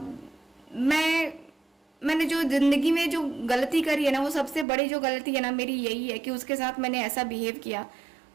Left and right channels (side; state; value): left; drops out; at 4.7 s